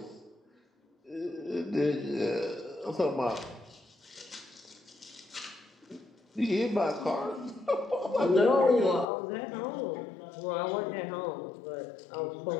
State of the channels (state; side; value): drops out; right; at 9.1 s